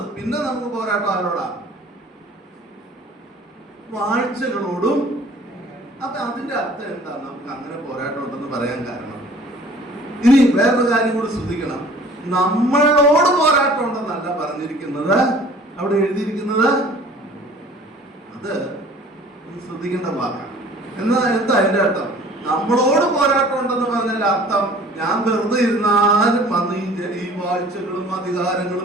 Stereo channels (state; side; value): normal; both; correlation 0.50